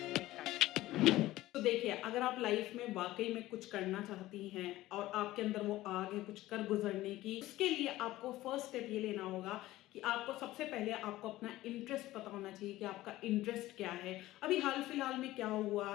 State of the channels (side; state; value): right; quieter; 16.5 dB